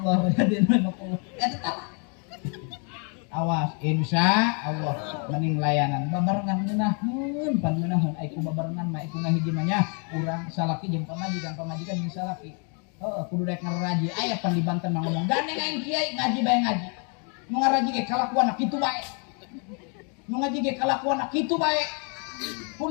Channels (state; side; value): quieter; right; 38.3 dB